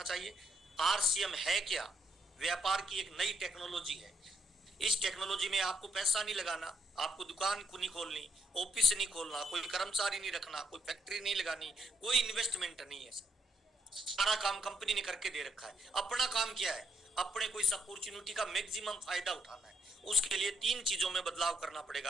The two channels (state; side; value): normal; both; correlation 0.75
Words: चाहिए। आरसीएम है क्या, व्यापार की एक नई टेक्नोलॉजी है। इस टेक्नोलॉजी में आपको पैसा नहीं लगाना, आपको दुकान को नहीं खोलनी, ऑफिस नहीं खोलना, कोई कर्मचारी नहीं रखना, कोई फैक्ट्री नहीं लगानी, कोई इन्वेस्टमेंट नहीं है। सारा काम कंपनी ने करके दे रखा है। अपना काम क्या है, अपने को इस अपॉर्चुनिटी का मैक्सिमम फायदा उठाना है। उसके लिए 3 चीजों में बदलाव करना पड़ेगा